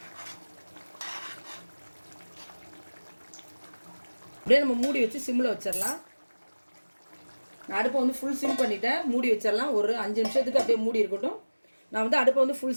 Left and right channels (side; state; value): both; inverted; correlation -1.00